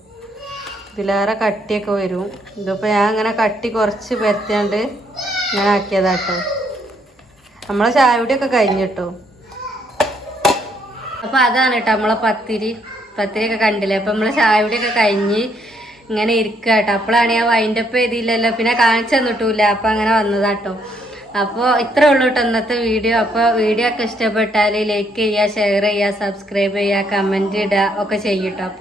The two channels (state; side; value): normal; both; correlation 0.71